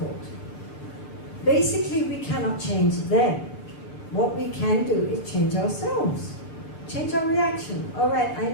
Basically, we cannot change them. What we can do is change ourselves. Change our reaction. All right, I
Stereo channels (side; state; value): right; late; 6.4 ms